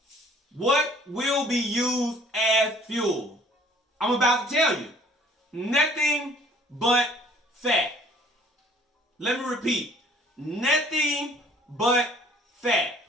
What will be used as fuel? I'm about to tell you. Nothing but fat. Let me repeat. Nothing but fat.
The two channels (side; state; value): both; normal; correlation 0.56